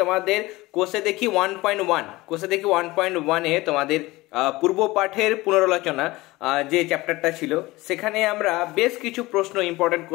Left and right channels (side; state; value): right; quieter; 20.2 dB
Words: কোষে দেখি 1.1 তোমাদের পূর্ব পাঠের পুনরালোচনা যে চ্যাপ্টারটা ছিল সেখানে আমরা বেশ কিছু প্রশ্ন, ইম্পর্টেন্ট